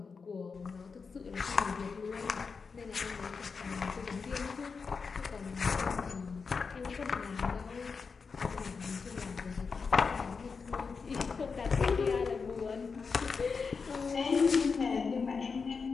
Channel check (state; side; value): quieter; right; 5.1 dB